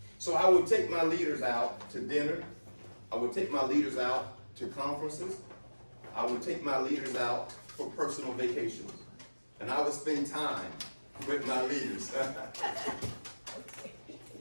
So I would take my leaders out to dinner. I would take my leaders out to conferences. I would take my leaders out for personal vacations. And I would spend time with my leaders.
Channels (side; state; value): both; inverted; correlation -1.00